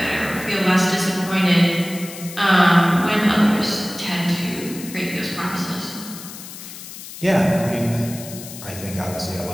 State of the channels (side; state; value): left; noise; hiss, 13 dB below the sound